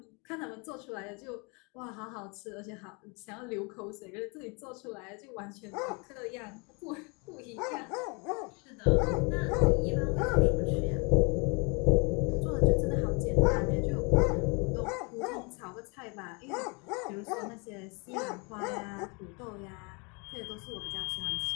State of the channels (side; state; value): right; quieter; 31.3 dB